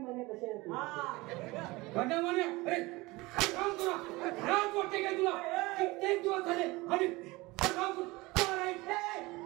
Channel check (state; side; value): quieter; left; 22.0 dB